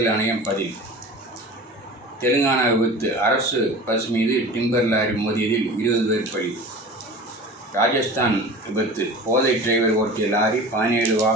ஆணையம் பதில். தெலுங்கானா விபத்து. அரசு பஸ் மீது டிம்பர் லாரி மோதியதில் 20 பேர் பலி. ராஜஸ்தான் விபத்து. போதை டிரைவர் ஓட்டிய லாரி 17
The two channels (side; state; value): both; normal; correlation 0.37